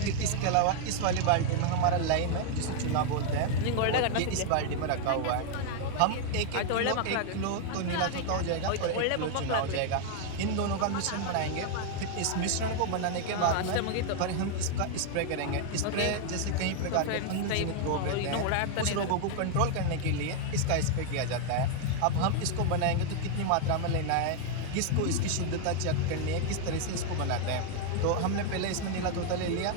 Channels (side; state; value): both; different; correlation 0.01